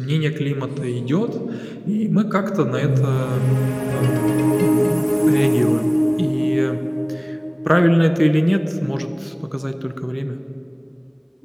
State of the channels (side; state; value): both; identical; correlation 1.00